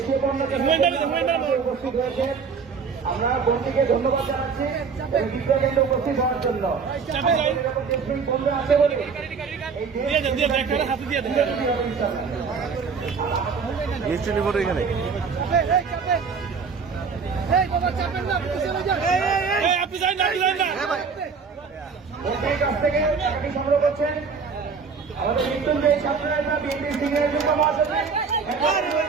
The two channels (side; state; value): left; quieter; 5.5 dB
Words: পণ্যকে উপস্থিত হয়েছেন। আমরা বোনটিকে ধন্যবাদ জানাচ্ছি এবং বিদ্যাকেন্দ্রে উপস্থিত হওয়ার জন্য। এরকম দেশপ্রেমিক বন্ধুরা আছে বলে এখানে মন্ত্রীর কাছ থেকে টাকাটি সংগ্রহ করছেন আমাদের মৃত্যুঞ্জয়ী ছাত্ররা বিএনপির সিনিয়র যুব মহাসচিব